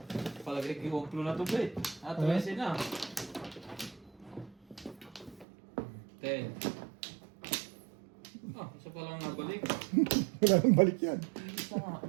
Palagay kiwumplo na to, Bet. 13 na. 10. Ah, isa pa lang nabalik. Wala nang balik yan. Isa nga.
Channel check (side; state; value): left; drops out; at 5.5 s